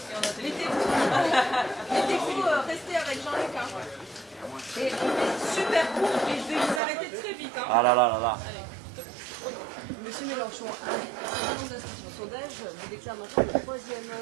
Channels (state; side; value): drops out; left; at 6.8 s